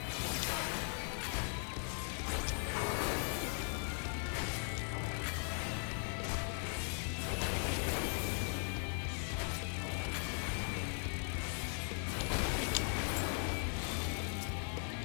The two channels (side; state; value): right; silent; 52 dB below the other